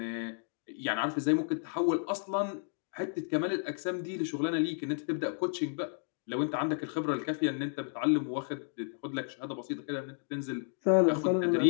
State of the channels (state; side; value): silent; right; 56 dB below the other